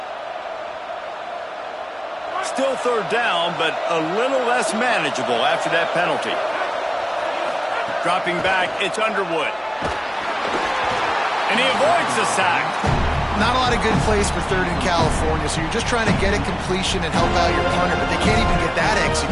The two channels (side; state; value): both; identical; correlation 1.00